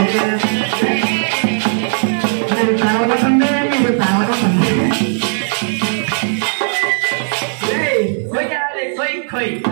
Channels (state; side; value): silent; left; digital silence